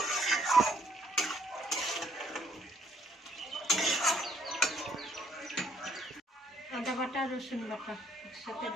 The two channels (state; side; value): normal; both; correlation 0.67